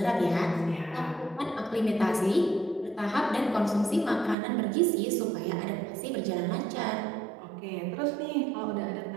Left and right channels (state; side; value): drops out; left; at 4.4 s